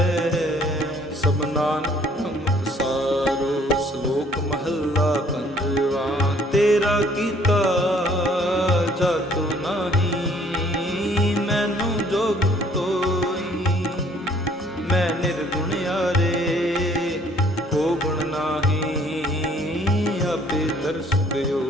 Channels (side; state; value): both; normal; correlation 0.60